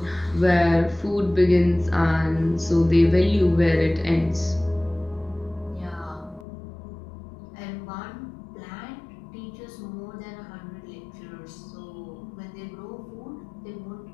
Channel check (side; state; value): right; drops out; at 6.5 s